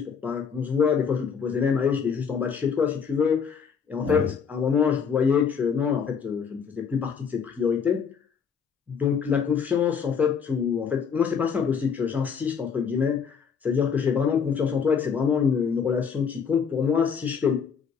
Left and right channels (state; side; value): quieter; right; 6.6 dB